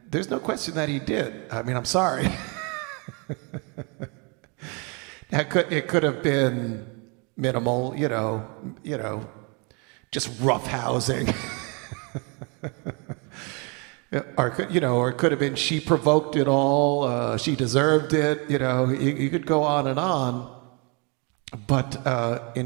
there's no question that he did. I mean, I'm sorry. It could have been minimal, just roughhousing. Or it could have been she provoked it all, she deserved it, you could go on and on. But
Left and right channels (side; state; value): left; quieter; 32.5 dB